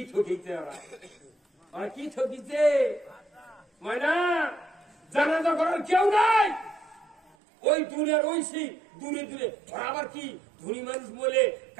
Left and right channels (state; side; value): drops out; left; at 7.4 s